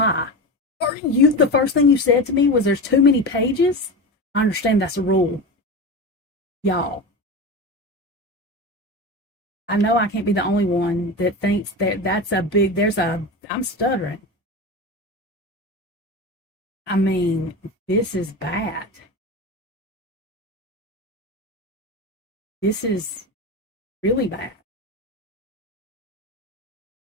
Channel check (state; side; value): normal; both; correlation 0.24